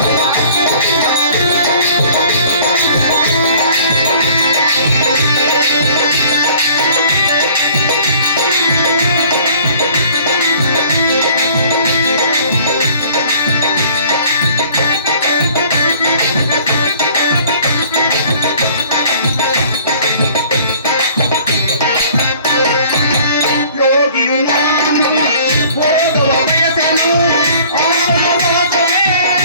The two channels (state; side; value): inverted; both; correlation -0.53